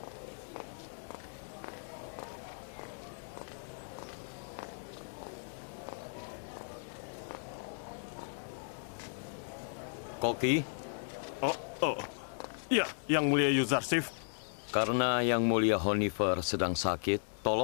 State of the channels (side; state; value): right; silent; digital silence